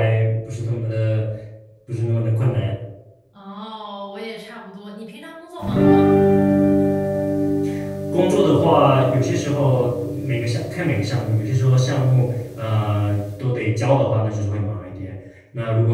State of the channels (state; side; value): identical; both; correlation 1.00